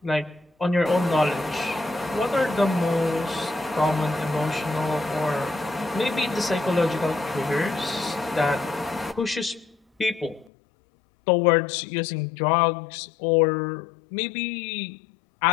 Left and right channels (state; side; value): drops out; right; at 10.5 s